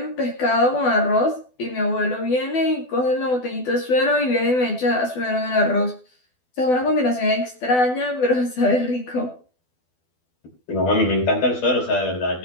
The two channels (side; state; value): right; late; 12 ms